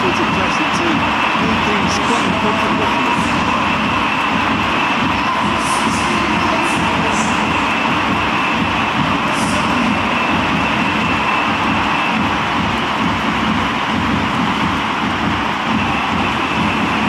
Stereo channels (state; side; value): identical; both; correlation 1.00